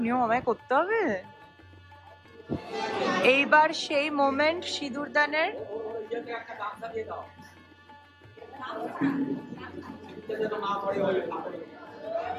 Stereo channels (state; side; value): identical; both; correlation 1.00